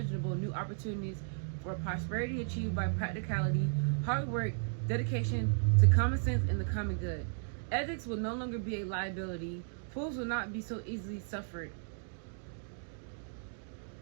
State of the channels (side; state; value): left; silent; digital silence